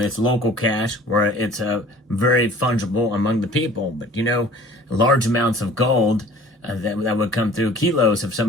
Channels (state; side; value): normal; both; correlation 0.48